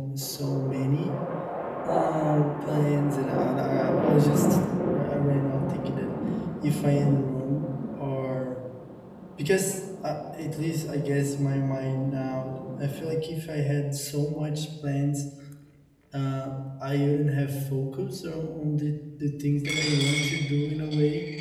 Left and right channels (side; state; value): both; identical; correlation 1.00